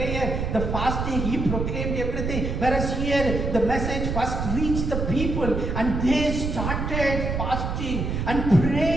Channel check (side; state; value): right; noise; rumble, 2 dB below the sound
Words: the fasting, he proclaimed everything. Whereas here, the message first reached the people, and they started fasting and